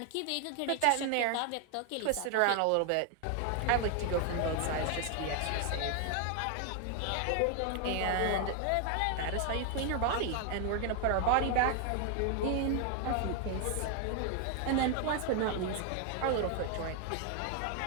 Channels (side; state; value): both; different; correlation 0.00